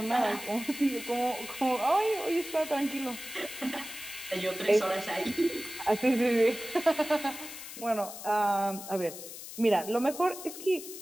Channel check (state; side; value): noise; left; hiss, 11 dB below the sound